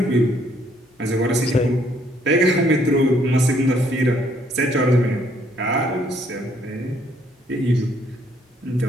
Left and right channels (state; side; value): normal; both; correlation 0.67